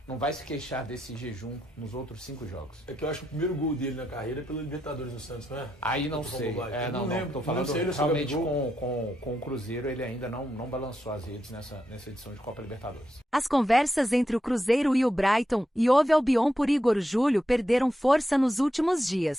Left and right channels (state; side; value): normal; both; correlation 0.84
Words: não vai se queixar desse jejum nos outros 5 jogos. É que eu acho que o primeiro gol dele na carreira é pelo Libertadores no Santos, não é? Aí não sei. Não lembro. Tô falando realmente com o Cruzeiro, ele ainda não balançou as redes nessa edição de Copa Libertadores. As conversas entre o Cruzeiro e o Brighton e Hove Albion por Igor Júlio perderam força nos últimos